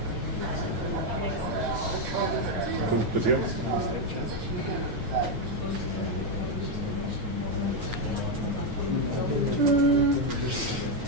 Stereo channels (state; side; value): late; left; 9.3 ms